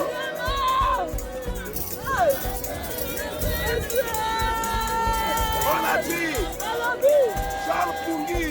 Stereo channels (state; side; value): identical; both; correlation 1.00